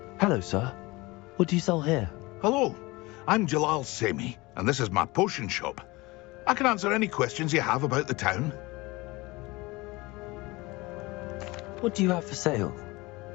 Hello, sir. What do you sell here? Hello, I'm Jalal Semi, and this is my potion shop. I can answer any questions you have about the town. What do you have for sale?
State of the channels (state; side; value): quieter; right; 22.5 dB